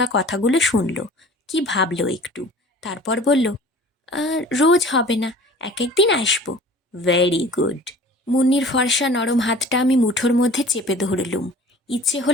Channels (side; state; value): both; normal; correlation 0.45